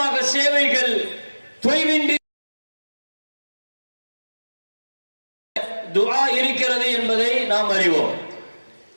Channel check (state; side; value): inverted; both; correlation -1.00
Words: சேவைகள் தொய்வின்றி துஆ இருக்கிறது என்பதை நாம் அறிவோம்.